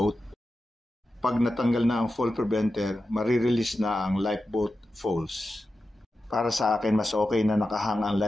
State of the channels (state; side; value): normal; both; correlation 0.92